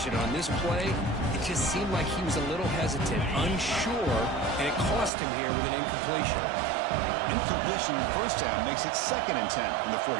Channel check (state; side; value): drops out; left; at 5.1 s